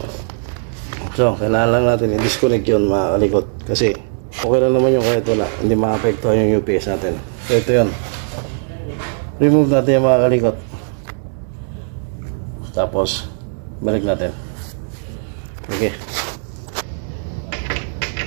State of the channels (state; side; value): silent; left; digital silence